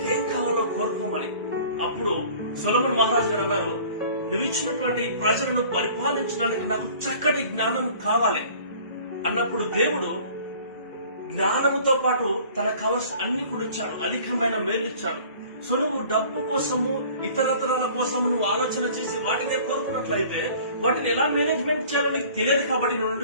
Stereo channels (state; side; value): inverted; both; correlation -0.49